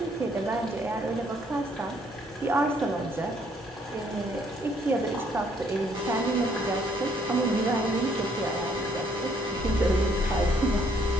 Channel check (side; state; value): both; normal; correlation 0.66